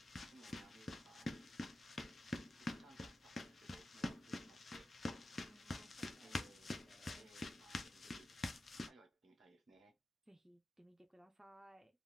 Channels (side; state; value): both; normal; correlation 0.92